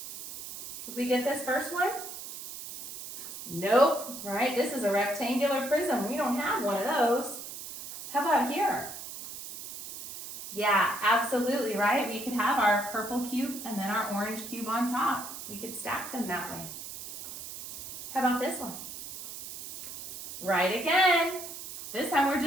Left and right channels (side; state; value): right; noise; hiss, 10 dB below the sound